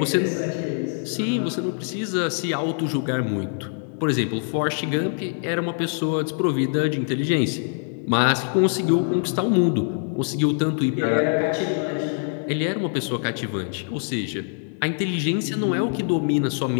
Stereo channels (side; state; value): right; silent; 63 dB below the other